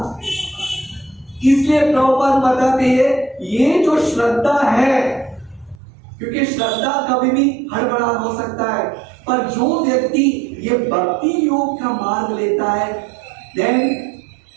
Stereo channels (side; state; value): left; drops out; at 5.8 s